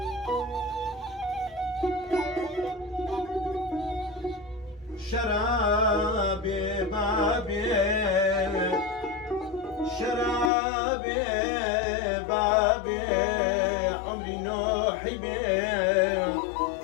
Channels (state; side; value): drops out; right; at 10.5 s